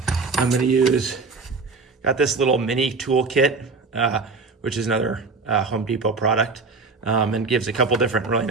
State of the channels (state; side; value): quieter; left; 4.2 dB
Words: going to use, got this little mini toolkit, which is another Home Depot product, and gives a couple different really